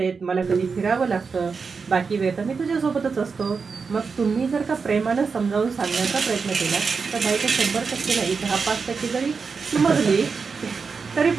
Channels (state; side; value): quieter; left; 5.2 dB